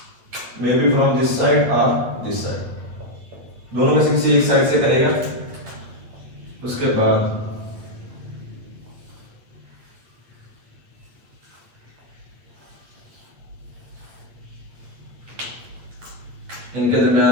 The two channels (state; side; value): late; left; 8.8 ms